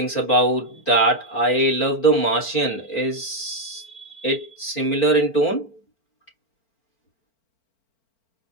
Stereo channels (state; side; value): late; right; 4.4 ms